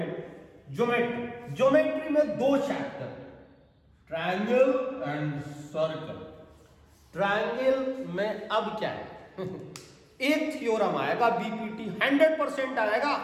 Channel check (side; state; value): both; identical; correlation 1.00